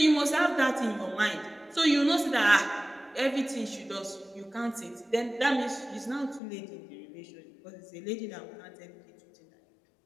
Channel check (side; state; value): right; drops out; at 6.4 s